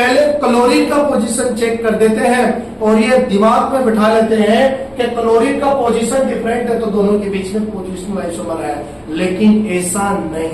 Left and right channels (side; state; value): both; identical; correlation 1.00